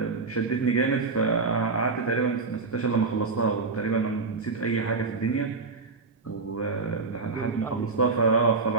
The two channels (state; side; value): quieter; left; 4.2 dB